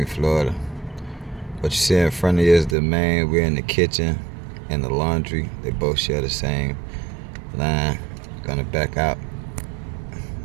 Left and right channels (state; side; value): drops out; left; at 2.8 s